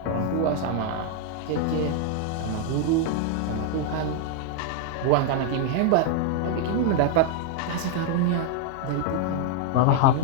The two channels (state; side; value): different; both; correlation 0.00